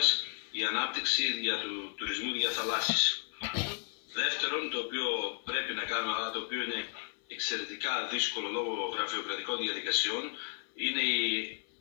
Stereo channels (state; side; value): silent; right; 55 dB below the other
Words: η ανάπτυξη για του τουρισμού διαθαλάσσης. Δεύτερον, το οποίο πρέπει να κάνουμε, αλλά το οποίο είναι εξαιρετικά δύσκολο λόγω γραφειοκρατικών διαδικασιών, είναι